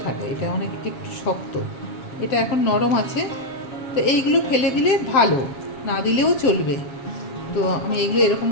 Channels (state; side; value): late; right; 7.3 ms